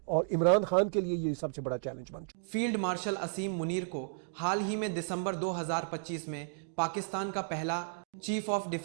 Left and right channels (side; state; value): left; silent; digital silence